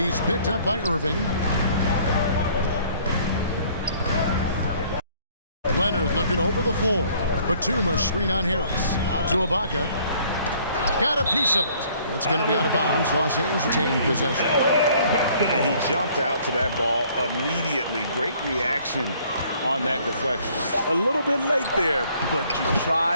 picked up by Irving. Leonard looking over the floor. Batuma screen on Harris. Out to Ibaka. Got a piece of it. It's going to be out of bounds. Los Angeles taking possession. And he jumped out to that ball immediately. Great reaction on that deflection. A little bit late there, but you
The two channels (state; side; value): inverted; both; correlation -0.59